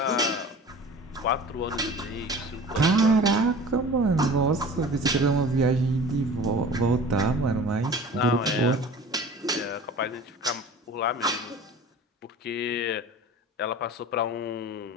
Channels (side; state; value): both; normal; correlation 0.41